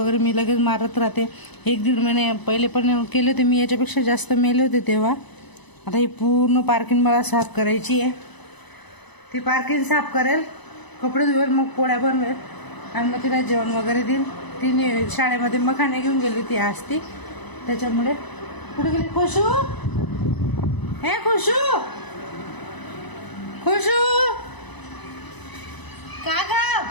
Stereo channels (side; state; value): right; late; 1.0 ms